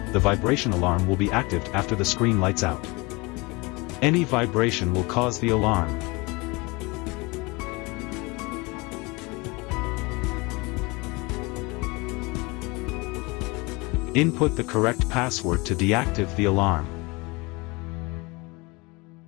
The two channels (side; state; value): right; quieter; 25.5 dB